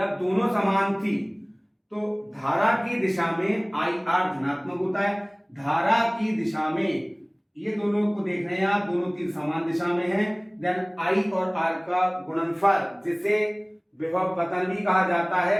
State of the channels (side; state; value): both; identical; correlation 1.00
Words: दोनों समान थी तो धारा की दिशा में IR धनात्मक होता है। धारा की दिशा में ये दोनों को देख रहे हैं आप, दोनों तीर समान दिशा में हैं। देन I और R का गुणनफल, जिसे विभव पतन भी कहा जाता